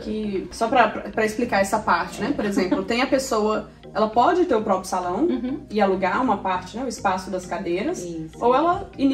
só pra explicar essa parte, né? Por exemplo, tem a pessoa... Ela pode ter o próprio salão e alugar uma parte, né? O espaço das cadeiras. Ou ela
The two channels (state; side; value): identical; both; correlation 1.00